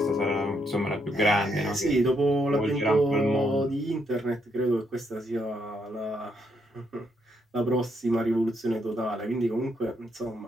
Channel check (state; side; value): normal; both; correlation 0.76